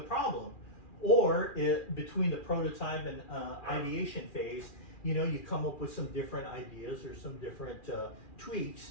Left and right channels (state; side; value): late; right; 2.4 ms